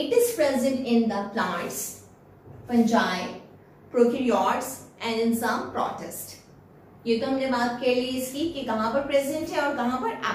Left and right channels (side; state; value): both; identical; correlation 1.00